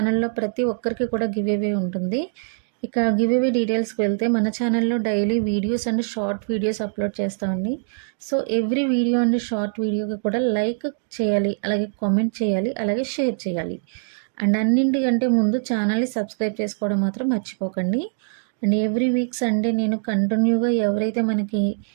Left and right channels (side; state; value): left; silent; digital silence